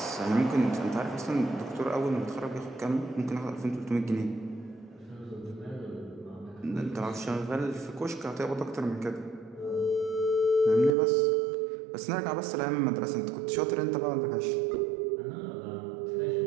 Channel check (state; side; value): drops out; left; at 11.0 s